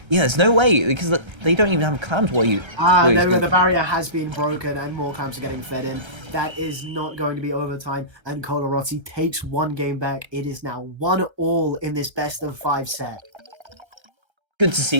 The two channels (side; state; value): left; late; 1.3 ms